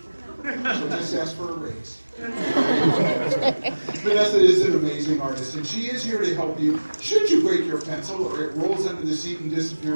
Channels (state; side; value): inverted; both; correlation -1.00